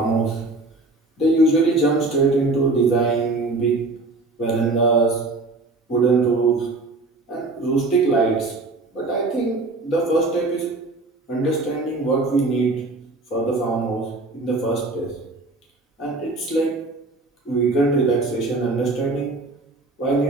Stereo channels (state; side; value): quieter; left; 3.2 dB